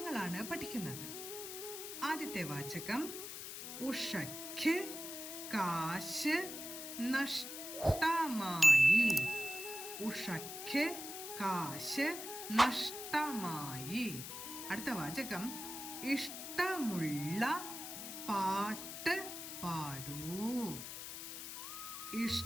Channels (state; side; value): noise; left; hiss, 8 dB below the sound